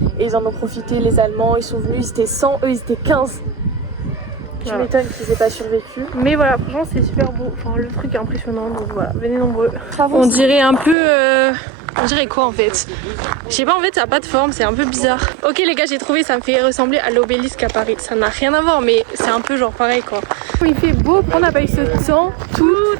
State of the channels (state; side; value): drops out; left; at 11.0 s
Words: et ils en ont profité, les Allemands, ils sont venus, ils étaient 100, eux ils étaient 15. Tu m'étonnes qu'ils aient pas survécu. Mais voilà, franchement c'est super beau, enfin le truc est impressionnant, donc voilà, venez nombreux. Bravo. On dirait un peu... On dirait quoi en fait? Je sais pas, en fait ça a pas de forme, c'est un peu bizarre. Ok les gars, j'ai trouvé, ça me fait ressembler à l'obélisque à Paris. Ça n'a rien à voir, mais c'est un peu genre pareil quoi. Il fait beau, on n'a pas eu ce temps